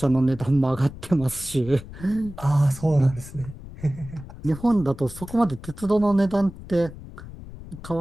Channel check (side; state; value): left; noise; rumble, 15 dB below the sound